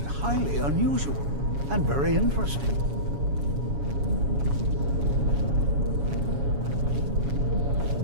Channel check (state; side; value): late; left; 7.1 ms